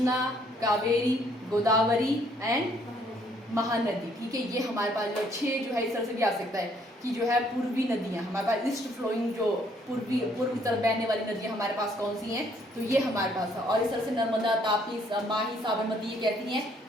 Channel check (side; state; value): both; normal; correlation 0.65